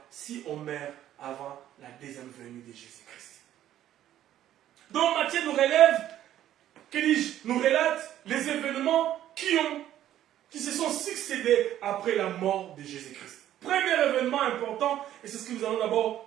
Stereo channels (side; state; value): left; quieter; 12.1 dB